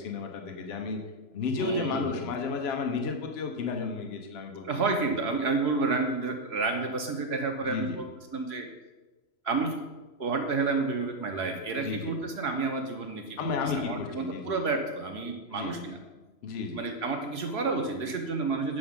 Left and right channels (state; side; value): late; right; 3.0 ms